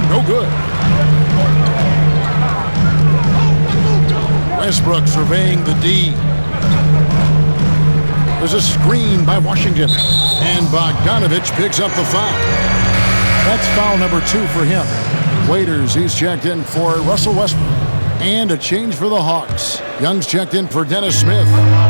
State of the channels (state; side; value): inverted; both; correlation -1.00